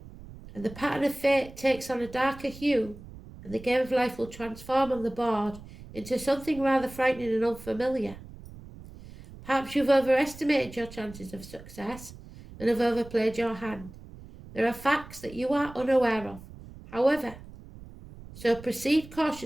the pattern of fate takes on a darker hue, and the game of life will transform on the board into something rather frightening and unfamiliar. Perhaps you've overestimated your chances of success and have overplayed your hand. There are facts that you are unaware of, however, so proceed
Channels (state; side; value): noise; right; rumble, 17 dB below the sound